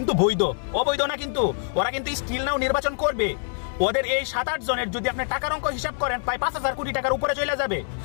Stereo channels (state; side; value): silent; right; 62 dB below the other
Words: বৈধ, অবৈধ না। কিন্তু ওরা কিন্তু স্টিল নাও নির্বাচন করবে। ওদের এই 7-8 জনের যদি আপনি টাকার অঙ্ক হিসাব করেন, প্রায় 5000 কোটি টাকার উপরে চলে যাবে।